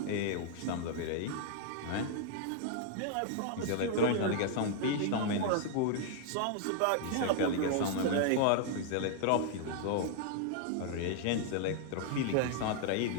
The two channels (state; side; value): different; both; correlation 0.00